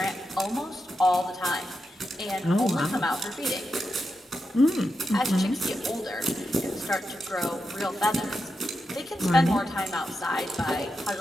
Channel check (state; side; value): normal; both; correlation 0.88